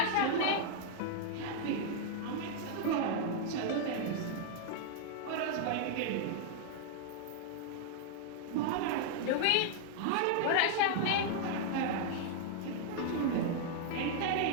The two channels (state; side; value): different; both; correlation -0.01